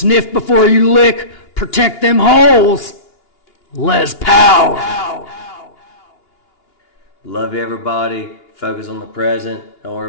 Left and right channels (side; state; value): right; late; 2.8 ms